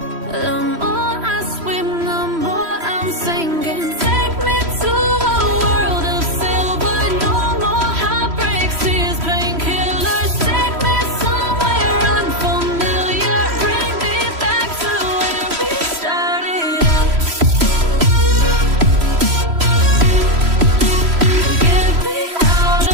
The more I swim, the more I'm sinking. Take me to a world of silver. No more heartbreaks, tears, painkillers. Take me somewhere unfamiliar. Bring me back to where we started out. Get me out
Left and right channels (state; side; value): late; left; 3.0 ms